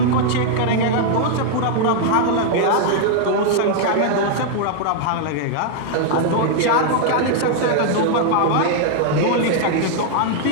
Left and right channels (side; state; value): both; different; correlation 0.00